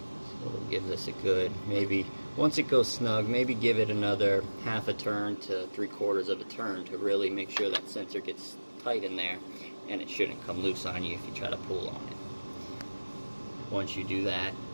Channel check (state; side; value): inverted; both; correlation -1.00